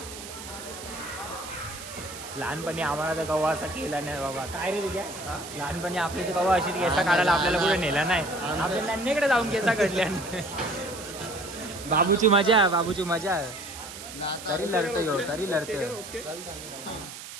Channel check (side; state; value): right; noise; hiss, 12 dB below the sound